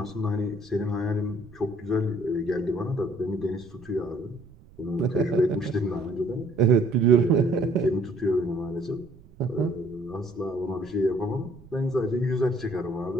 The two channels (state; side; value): noise; right; rumble, 24 dB below the sound